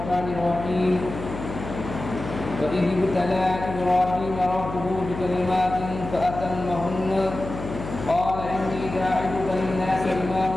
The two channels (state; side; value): noise; left; hum, 9 dB below the sound